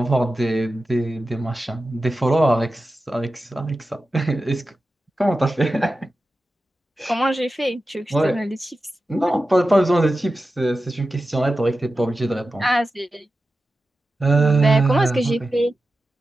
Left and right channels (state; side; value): normal; both; correlation 0.93